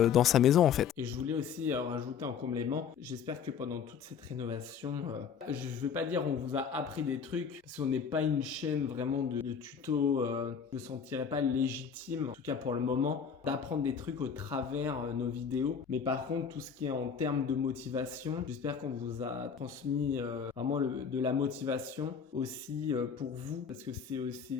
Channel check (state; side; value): quieter; right; 7.0 dB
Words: sa maison en fait. Et je voulais aussi rajouter en complément, j'espère que pendant toute cette rénovation, je ne veux pas dire on vous a appris des trucs, parce qu'on n'est pas une chaîne vraiment de tutos, je ne me sentirais pas légitime, en tout cas pour le moment, d'apprendre des trucs au travers nos vidéos. Mais par contre, tout ce qui est en termes de motivation, j'espère qu'on vous a transmis vraiment de la motivation aussi pour vous, parce que c'est